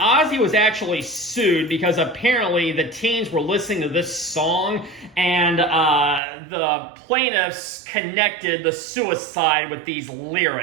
was actually sued because apparently the teens were listening to this song and the plaintiffs connected the suicide with these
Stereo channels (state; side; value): drops out; left; at 6.2 s